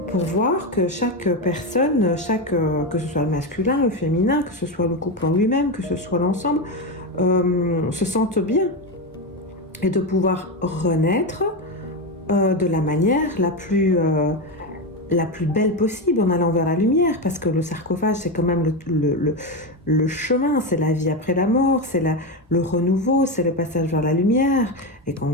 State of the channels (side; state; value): both; normal; correlation 0.13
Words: pour voir que chaque personne, que ce soit le masculin, le féminin, que ce soit le couple en lui-même, que ce soit l'ensemble, se sente bien et de pouvoir renaître de la manière la plus belle possible en allant vers la lumière, parce que le sarcophage c'est quand même le chemin, c'est la vie après la mort, c'est le renouveau, c'est le passage vers la lumière. Et quand